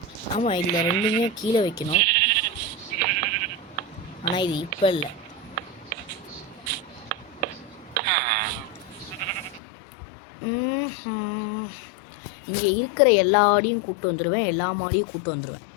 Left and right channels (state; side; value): drops out; right; at 9.6 s